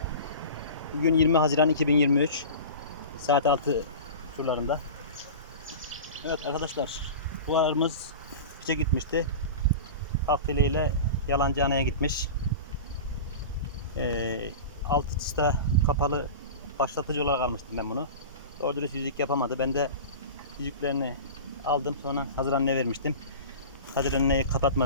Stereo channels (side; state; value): both; inverted; correlation -0.32